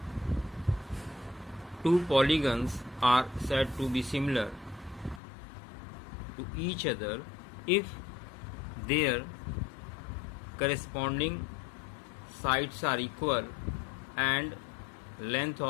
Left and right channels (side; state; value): right; drops out; at 5.2 s